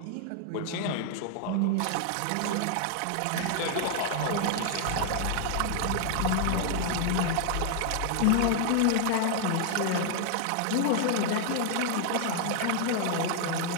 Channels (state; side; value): different; both; correlation 0.00